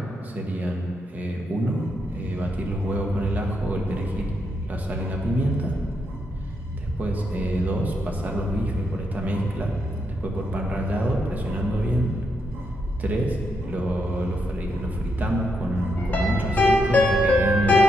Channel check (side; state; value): both; normal; correlation 0.81